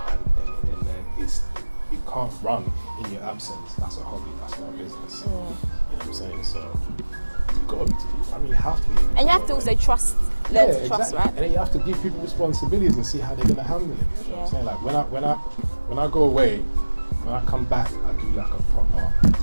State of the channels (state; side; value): inverted; both; correlation -1.00